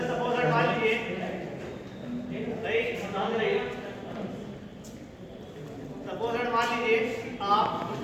सपोज मान लीजिए भाई, ध्यान रहिए, सपोज मान लीजिए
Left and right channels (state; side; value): identical; both; correlation 1.00